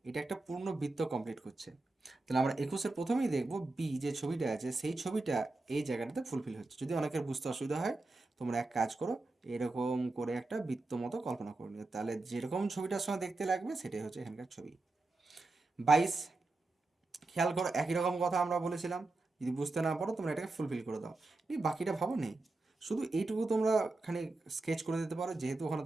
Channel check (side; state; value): left; quieter; 3.2 dB